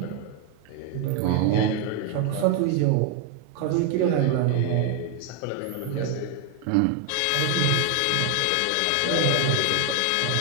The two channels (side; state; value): both; different; correlation 0.01